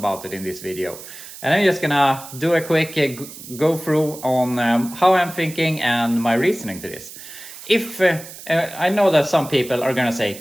it in this video. And I'm just gonna do a quick go through on how I'm thinking and my reasoning to this. If I know that some people are gonna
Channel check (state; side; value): noise; right; hiss, 15 dB below the sound